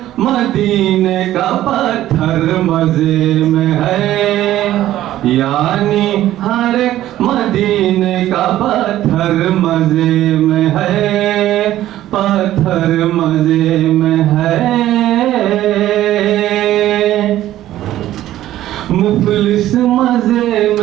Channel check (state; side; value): quieter; left; 13.7 dB